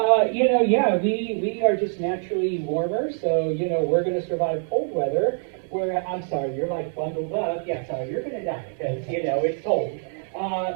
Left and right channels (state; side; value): silent; left; digital silence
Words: We are just naturally warmer, so, we're going to survive cold weather. I'm sorry, you're like bundled up. Yeah, sorry, you're going to die because, it's cold.